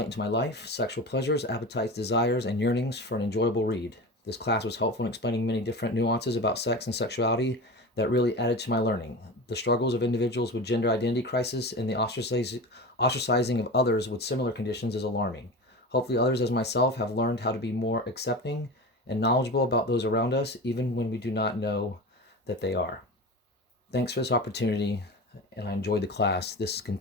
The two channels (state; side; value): normal; both; correlation 0.29